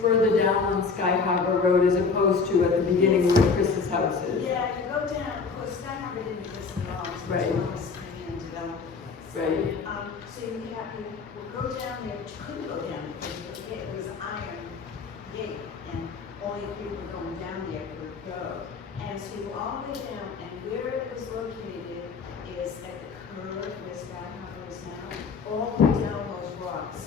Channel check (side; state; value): right; quieter; 5.0 dB